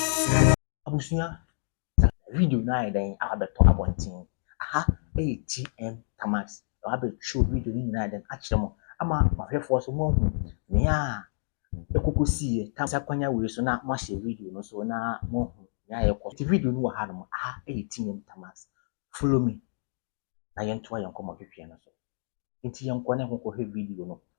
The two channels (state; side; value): silent; right; digital silence